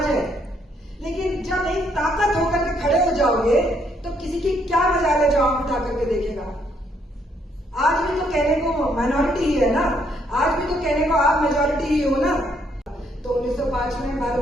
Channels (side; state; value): both; normal; correlation 0.71